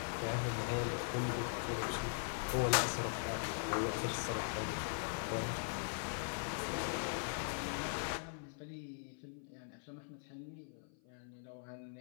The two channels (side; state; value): right; silent; 50 dB below the other